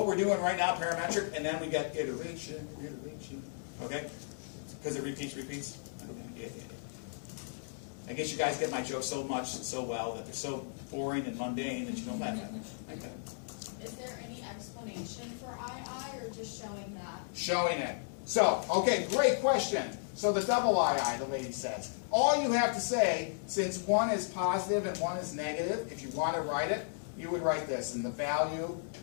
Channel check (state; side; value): silent; right; digital silence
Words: we're doing right now, parametric, and then we get iteration, okay? Because it repeats. Yeah. I guess you guys get my jokes so much and so well that they're so boring and mundane that you don't laugh at them. Okay. Is there any explanation for II or just showing that? Showing it. So, okay, great question. So the double II, the lady says. All you have to say, since one is positive and one is negative, if you want to write it, you would write this. And the value